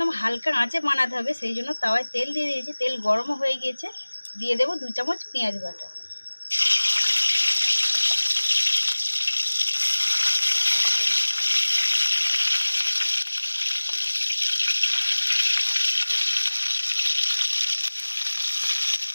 হালকা আঁচে বানাতে হবে, সেই জন্য তাওয়ায় তেল দিয়ে দিয়েছি। তেল গরমও হয়ে গিয়েছে, দিয়ে দেবো 2 চামচ পেঁয়াজ বাটা।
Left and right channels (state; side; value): inverted; both; correlation -1.00